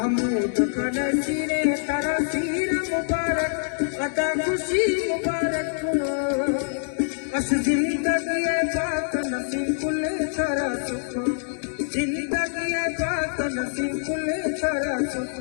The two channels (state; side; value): silent; right; digital silence